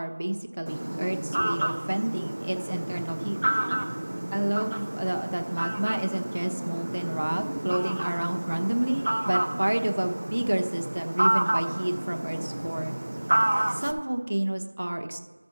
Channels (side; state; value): both; inverted; correlation -1.00